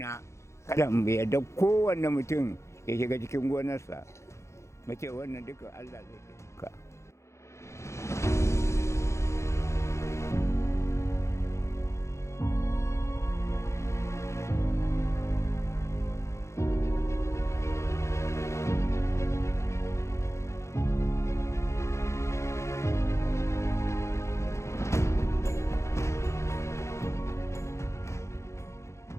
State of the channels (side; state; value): right; late; 0.14 ms